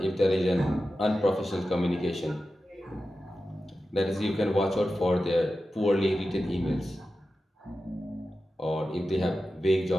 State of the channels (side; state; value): both; normal; correlation 0.93